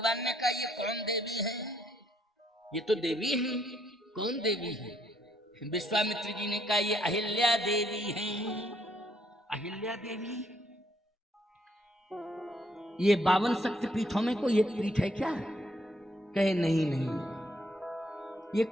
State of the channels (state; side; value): normal; both; correlation 0.71